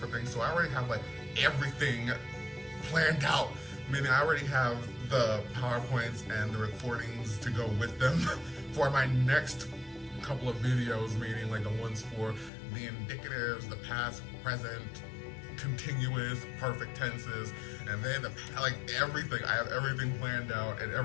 things, so I already have like everything planned out, meaning I already have the PowerPoints and the recordings to go with them for my next couple of videos, meaning like the ones for the indicatives, the past, present, continuous, perfect tenses, and then like everything. I have everything planned out and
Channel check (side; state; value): right; drops out; at 12.5 s